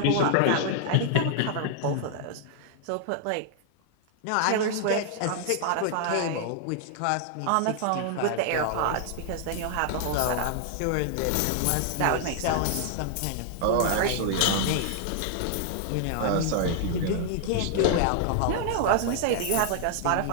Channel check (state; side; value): different; both; correlation -0.01